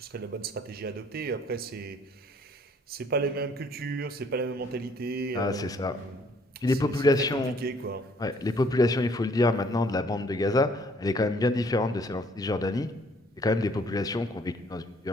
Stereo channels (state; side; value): normal; both; correlation 0.61